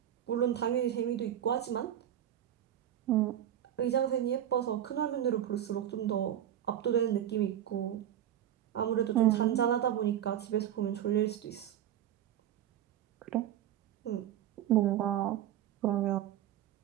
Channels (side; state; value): left; quieter; 11.1 dB